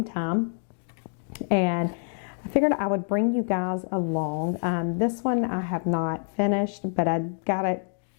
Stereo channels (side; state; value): right; silent; 60 dB below the other